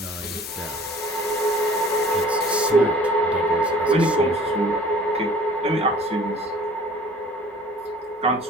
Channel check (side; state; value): both; normal; correlation 0.50